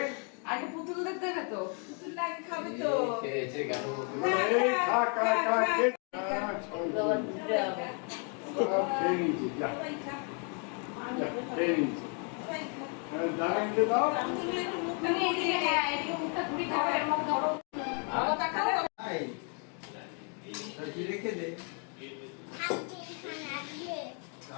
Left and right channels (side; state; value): right; quieter; 39.5 dB